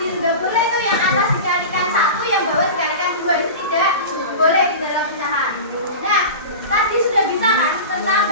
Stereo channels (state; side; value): inverted; both; correlation -0.30